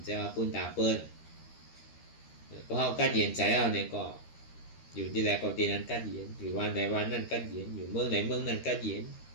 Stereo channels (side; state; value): right; late; 13 ms